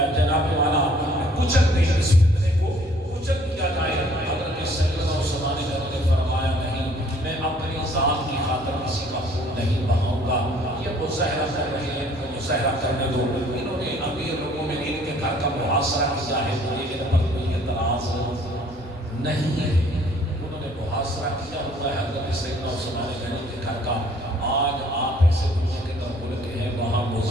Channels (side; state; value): both; normal; correlation 0.58